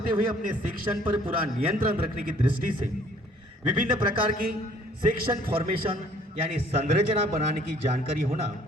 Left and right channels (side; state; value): both; normal; correlation 0.58